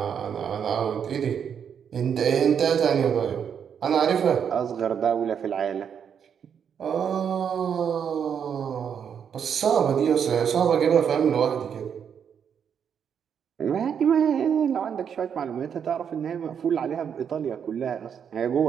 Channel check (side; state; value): left; quieter; 7.7 dB